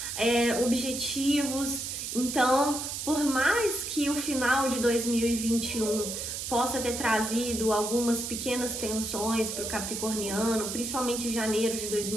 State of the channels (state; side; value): noise; right; hiss, 5 dB below the sound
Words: objetivos. Então, por mais que o final de 2021 possa ter trazido algumas pequenas tensões para o capricorniano, principalmente em janeiro de